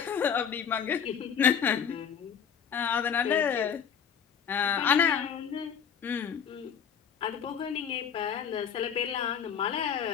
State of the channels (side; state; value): right; quieter; 7.6 dB